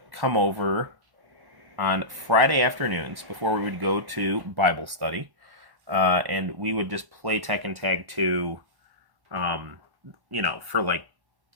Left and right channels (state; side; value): late; left; 1.1 ms